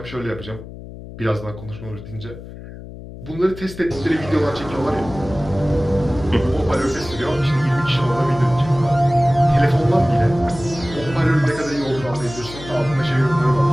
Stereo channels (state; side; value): noise; left; hum, 14 dB below the sound